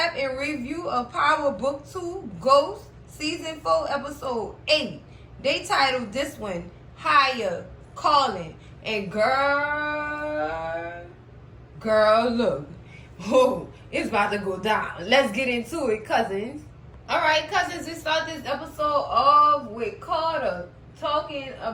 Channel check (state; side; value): identical; both; correlation 1.00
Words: and review of Power Book 2 Ghost Season 4 Episode 8. They titled this one, Higher Calling. And girl, look. Oh, it's about to go down. Let's get into it, cousins. Alright, cousins, we start this episode off with Carter talking